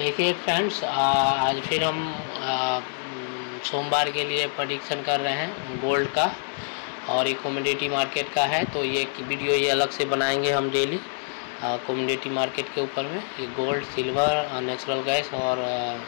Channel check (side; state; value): right; silent; digital silence